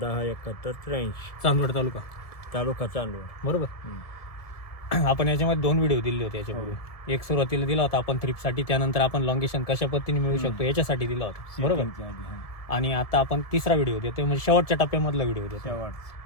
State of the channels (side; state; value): right; late; 1.7 ms